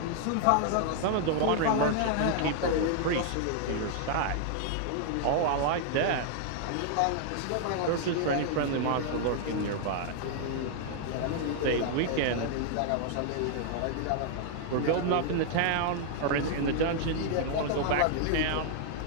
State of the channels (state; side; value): different; both; correlation 0.00